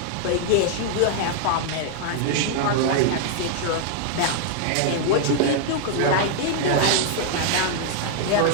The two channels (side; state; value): both; different; correlation 0.00